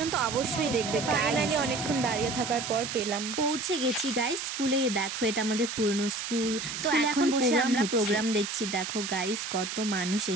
অবশ্যই দেখবে। ফাইনালি অনেকক্ষণ দাঁড়িয়ে থাকার পর পেলাম। পৌঁছে গেছি গাইস স্কুলে। দেখো এটা আমাদের পুরনো স্কুল। তো এখন বসে আমরা প্রোগ্রাম দেখছি। দেখো গাইস কত মানুষ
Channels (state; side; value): noise; right; hiss, 5 dB below the sound